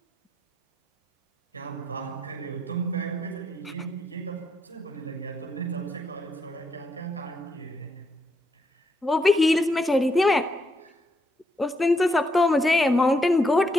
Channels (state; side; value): normal; both; correlation 0.78